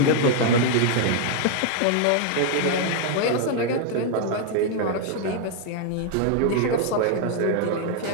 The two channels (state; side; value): different; both; correlation 0.00